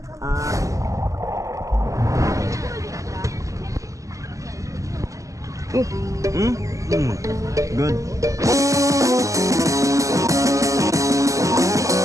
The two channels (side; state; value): left; late; 0.16 ms